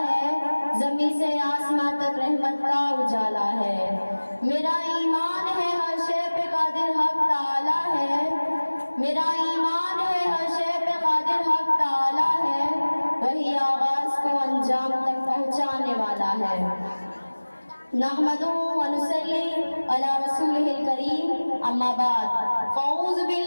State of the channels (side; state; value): both; inverted; correlation -1.00